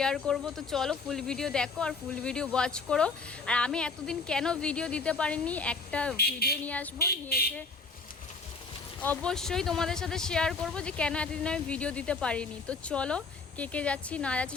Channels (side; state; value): right; quieter; 4.3 dB